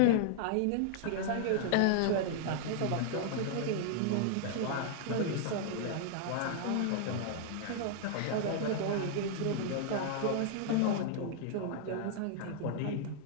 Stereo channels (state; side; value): different; both; correlation -0.01